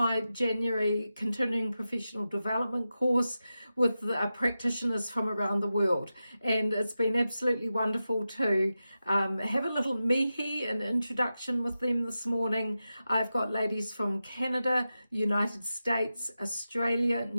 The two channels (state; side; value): inverted; both; correlation -0.92